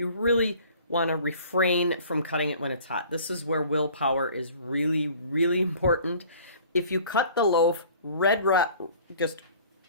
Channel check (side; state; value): both; inverted; correlation -0.50